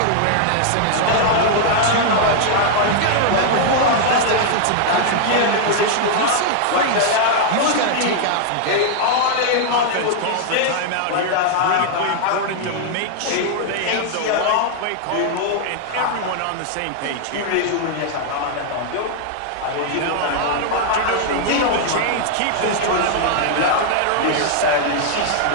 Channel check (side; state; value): both; different; correlation -0.01